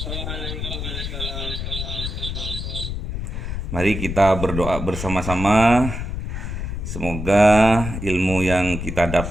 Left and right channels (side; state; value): left; noise; rumble, 5 dB below the sound